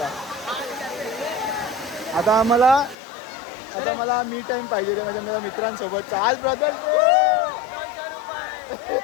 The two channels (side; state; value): right; drops out; at 3.0 s